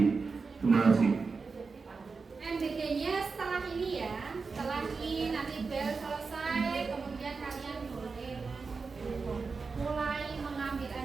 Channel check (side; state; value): left; quieter; 4.6 dB